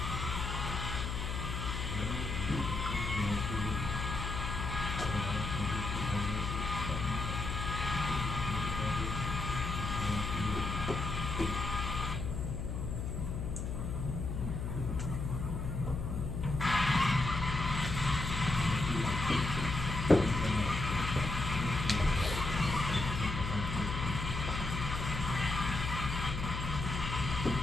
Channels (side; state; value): left; noise; hum, 3 dB below the sound